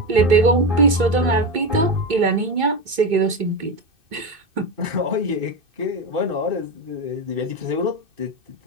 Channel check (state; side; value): late; left; 2.6 ms